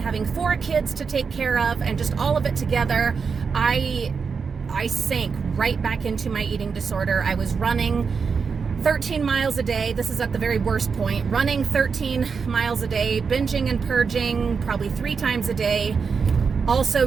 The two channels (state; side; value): quieter; left; 5.5 dB